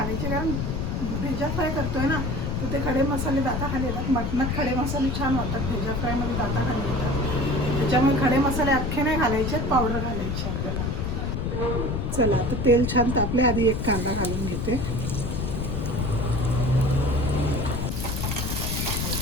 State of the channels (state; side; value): noise; left; rumble, 1 dB below the sound